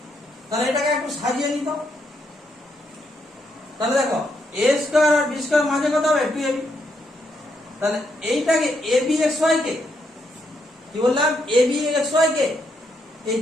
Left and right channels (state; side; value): normal; both; correlation 0.77